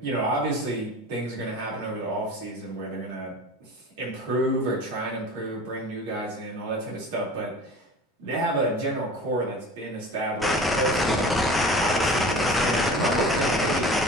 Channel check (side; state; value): both; normal; correlation 0.38